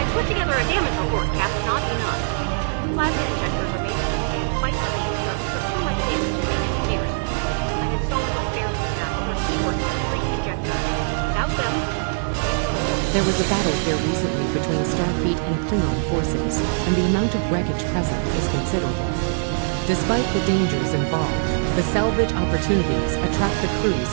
Put together a damage report, Cap. Not enough. Plasma injectors are made to withstand quite a beating, but we took too much damage in main engineering. I'm installing what spares we have, but we're short 3 injectors. Without them, it wouldn't work. There was a battle here recently between Starfleet and Klingon forces, and the amount of wreckage present is considerable. Despite the dangers involved, the salvage opportunities attract the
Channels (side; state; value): left; silent; digital silence